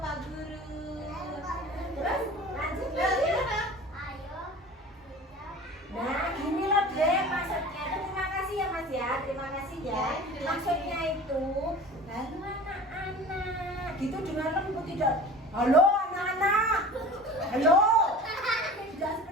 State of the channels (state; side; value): normal; both; correlation 0.39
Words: Guru. Terus lanjut Ya, lagi. gimana? Ayo. Nah, gini loh deh maksudnya. Terima kasih ya Mas ya. Terima kasih ya. Ya, Maksudnya itu, halo anak-anak. Gitu dengan lembut tidak. Halo anak-anak. Halo. Tidak